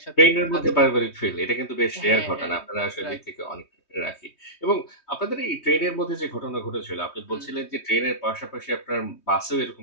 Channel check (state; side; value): late; right; 3.2 ms